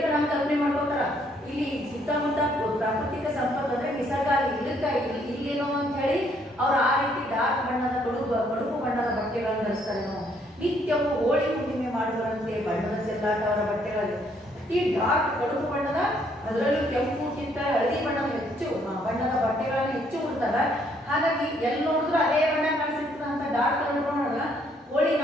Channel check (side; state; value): both; normal; correlation 0.68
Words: ನಾವು ಕಲ್ಪನೆ ಮಾಡ್ಕೋತಾರ ಇಲ್ಲಿ ಸುತ್ತಮುತ್ತ ಪ್ರಾಕೃತಿಕ ಸಂಪತ್ತು ಅಂದ್ರೆ ನಿಸರ್ಗ ಇಲ್ಲೇನೋ ಅಂತ ಹೇಳಿ ಅವ್ರು ಆ ರೀತಿ ಡಾರ್ಕ್ ಬಣ್ಣದ ಕಡುಪು ಬಣ್ಣದ ಬಟ್ಟೆಗಳನ್ನು ಧರಿಸ್ತಾರೇನೋ. ನಿತ್ಯವೂ ಹೋಳಿ ಹುಣ್ಣಿಮೆ ಮಾಡುವರಂತೆ ಬಣ್ಣದ ಚೆಲ್ಲಾಟ ಅವರ ಬಟ್ಟೆಗಳಲ್ಲಿ ಈ ಡಾರ್ಕ್ ಕಡುಪು ಬಣ್ಣದ ಅದರಲ್ಲೂ ಕೆಂಪುಕ್ಕಿಂತ ಹಳದಿ ಬಣ್ಣದ ಬಟ್ಟೆಗಳನ್ನು ಹೆಚ್ಚು ಉಡ್ತಾರ. ಹಾಗಾಗಿ ಎಲ್ಲಿ ನೋಡಿದ್ರು ಅದೇ ಬಣ್ಣ ಕಾಣಿಸಿರ್ತದ ಅಂತ ಡಾರ್ಕ್ ಕಲರ್ ನೋಡಲ್ಲ. ಹೋಳಿ